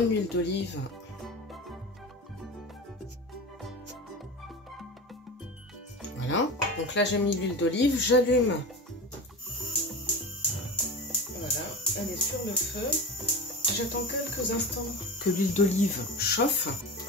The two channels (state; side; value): normal; both; correlation 0.28